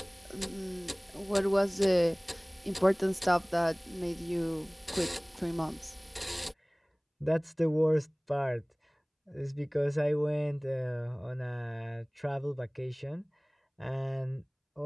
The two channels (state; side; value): identical; both; correlation 1.00